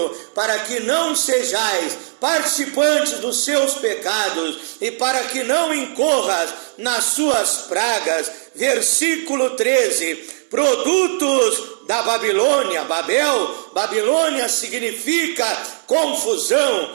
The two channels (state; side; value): silent; left; 60 dB below the other